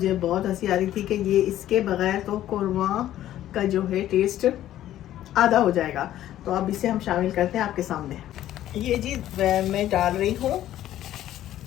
बहुत हंसी आ रही थी कि ये इसके बगैर तो कोरमा का जो है टेस्ट आधा हो जाएगा। तो अब इसे हम शामिल करते हैं आपके सामने। ये जी मैं डाल रही हूँ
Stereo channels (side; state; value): right; quieter; 12.8 dB